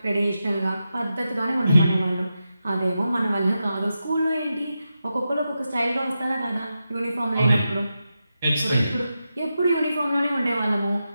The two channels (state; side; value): inverted; both; correlation -0.89